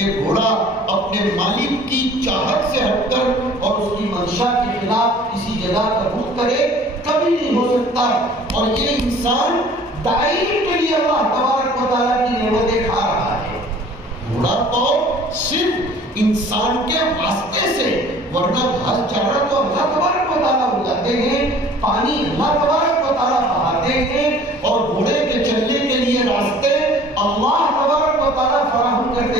گھوڑا اپنے مالک کی چاہت سے ہٹ کر اور اس کی منشا کے خلاف کسی جگہ کا رخ کرے، کبھی نہیں ہو سکتا. اور یہ انسان دائم کے لیے اللہ تبارک و تعالیٰ کی نعمتیں کھا رہا ہے. گھوڑا تو صرف انسان کے واسطے سے، ورنہ گھاس چارہ تو اللہ تبارک و تعالیٰ اگاتے ہیں، پانی اللہ تبارک و تعالیٰ بہاتے ہیں، اور گھوڑے کے چلنے کے لیے راستے اللہ تبارک و تعالیٰ فراہم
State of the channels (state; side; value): normal; both; correlation 0.50